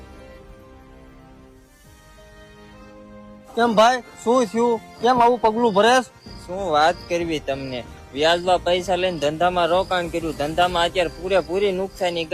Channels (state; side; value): identical; both; correlation 1.00